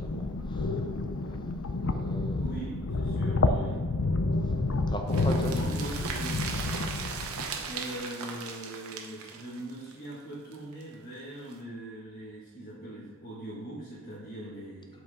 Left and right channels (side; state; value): both; normal; correlation 0.58